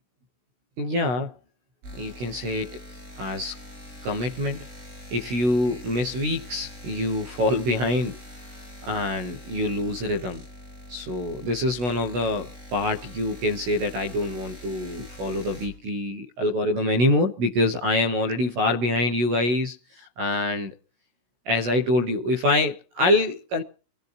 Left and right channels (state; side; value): late; left; 16 ms